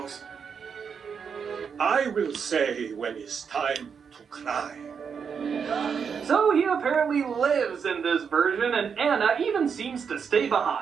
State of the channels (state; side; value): quieter; left; 6.5 dB